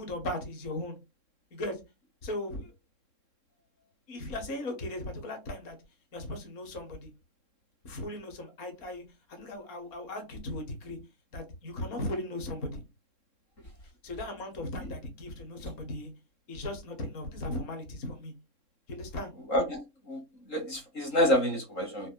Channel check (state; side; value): late; right; 3.7 ms